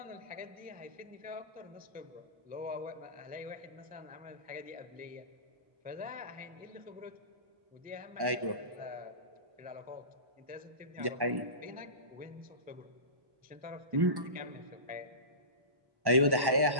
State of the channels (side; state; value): left; late; 1.1 ms